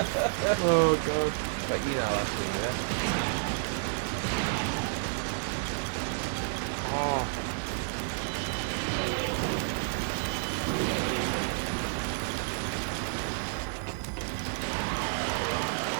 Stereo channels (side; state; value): left; silent; digital silence